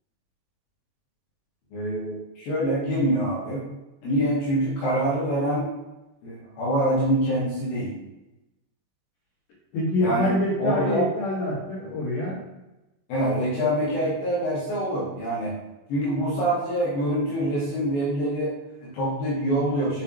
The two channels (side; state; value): right; late; 21 ms